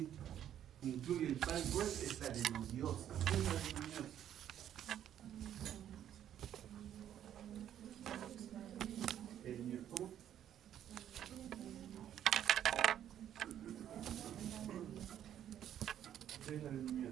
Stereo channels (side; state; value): left; quieter; 10.5 dB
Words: incluye el Parkinson es la adenomiosis. ¿Qué es la adenomiosis? ¿Cómo? ¿Qué es la